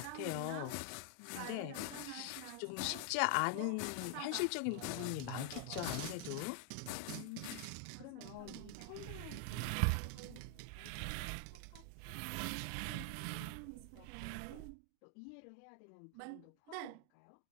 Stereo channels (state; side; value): different; both; correlation 0.00